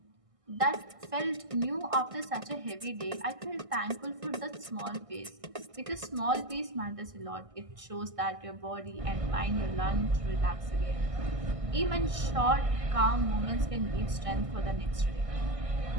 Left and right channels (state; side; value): late; left; 1.6 ms